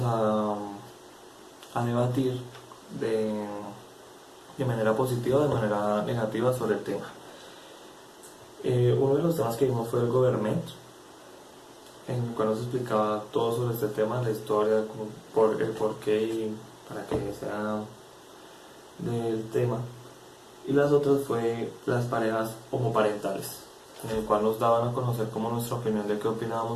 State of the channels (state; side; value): identical; both; correlation 1.00